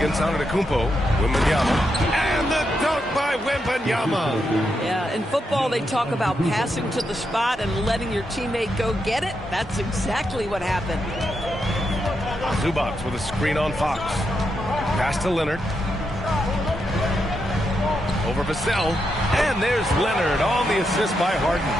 Antetokounmpo. Wembanyama. And the dunk by Wembanyama. Yeah, in football they talk about passing to the spot and letting your teammate go get it. That's exactly what happened. Zubac with a screen on Fox. Pass to Leonard. Over Vassell. And there's Leonard on the assist by Harden.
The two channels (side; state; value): both; normal; correlation 0.83